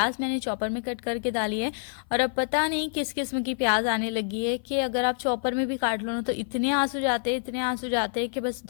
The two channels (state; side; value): silent; right; 56 dB below the other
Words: मैंने चॉपर में कट करके डाली है। और अब पता नहीं किस किस्म की प्याज आने लगी है कि अगर आप चॉपर में भी काट लो ना तो इतने आंसू जाते हैं, इतने आंसू जाते हैं कि बस